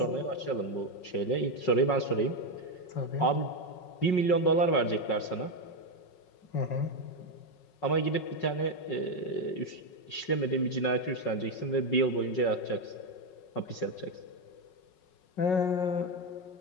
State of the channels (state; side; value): late; right; 5.4 ms